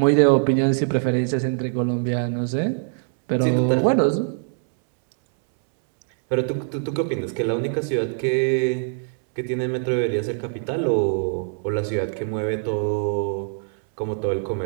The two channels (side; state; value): left; silent; 64 dB below the other